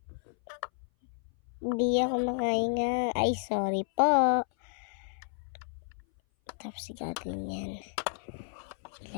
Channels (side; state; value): right; silent; 57 dB below the other